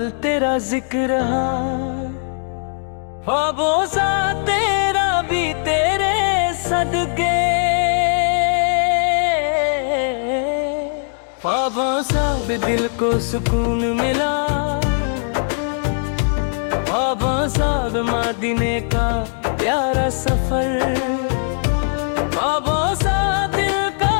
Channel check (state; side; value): silent; right; digital silence